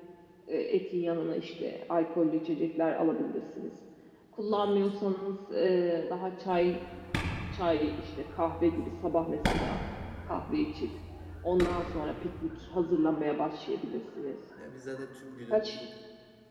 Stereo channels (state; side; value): identical; both; correlation 1.00